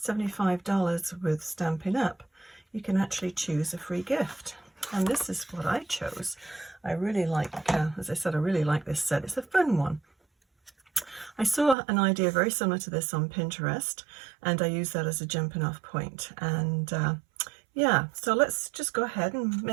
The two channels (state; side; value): drops out; left; at 11.8 s